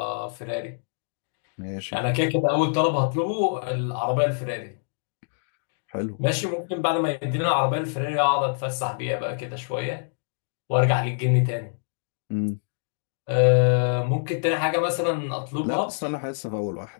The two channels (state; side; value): silent; right; digital silence